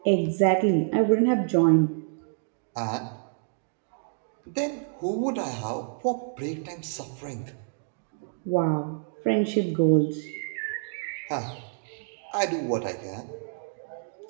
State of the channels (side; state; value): left; silent; digital silence